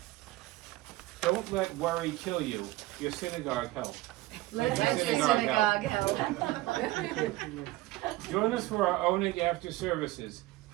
Don't let worry kill you. Your synagogue help. Let your your synagogue synagogue help. Join us for our Oneg after services.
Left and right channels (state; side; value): quieter; left; 18.2 dB